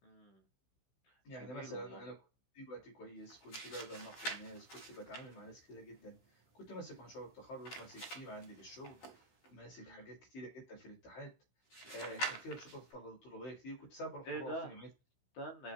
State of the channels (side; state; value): right; late; 15 ms